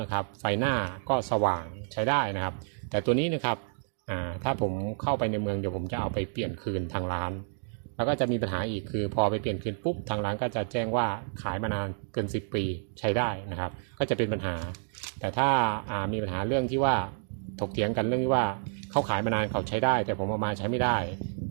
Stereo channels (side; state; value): left; silent; digital silence